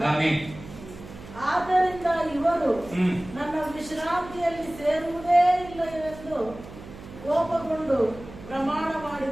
ಆದ್ದರಿಂದ ಇವರು ನನ್ನ ವಿಶ್ರಾಂತಿಯಲ್ಲಿ ಸೇರುವುದೇ ಇಲ್ಲ ಎಂದು கோபகொண்டு பிரமாண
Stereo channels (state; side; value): noise; right; hum, 16 dB below the sound